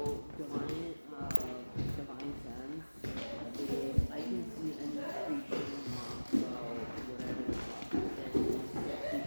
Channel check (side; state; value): both; inverted; correlation -1.00